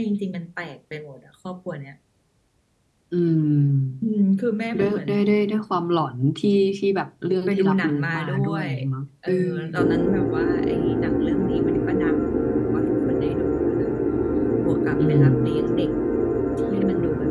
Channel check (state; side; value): identical; both; correlation 1.00